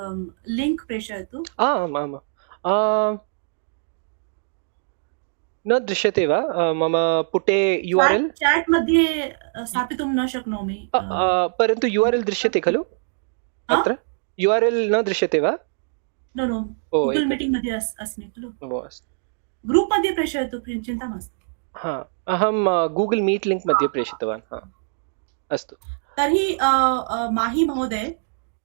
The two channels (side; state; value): left; silent; digital silence